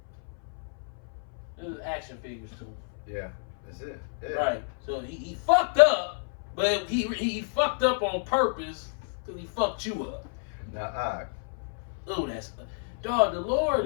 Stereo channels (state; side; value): silent; right; 56 dB below the other